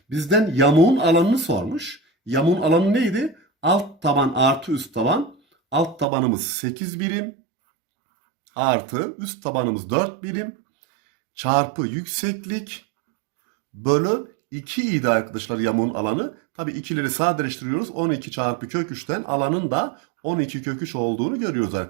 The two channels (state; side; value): drops out; left; at 6.1 s